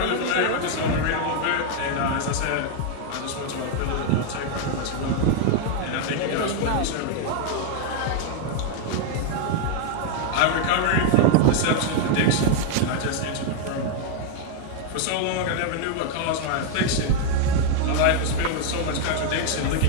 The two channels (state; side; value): different; both; correlation 0.00